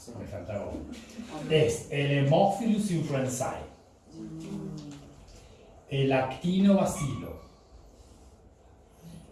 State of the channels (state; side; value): identical; both; correlation 1.00